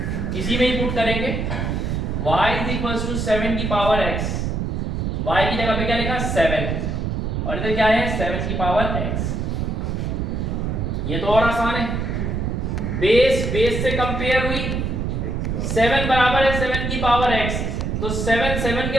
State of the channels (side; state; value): right; noise; rumble, 1 dB below the sound